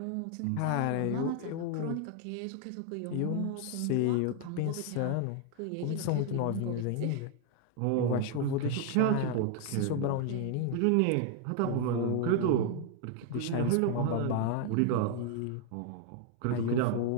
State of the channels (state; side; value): different; both; correlation 0.00